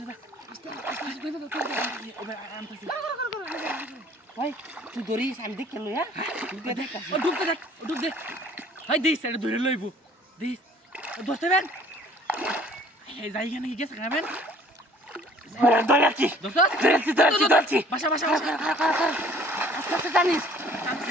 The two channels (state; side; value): normal; both; correlation 0.54